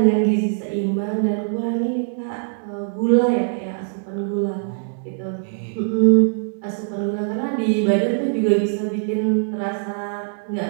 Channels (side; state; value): left; silent; digital silence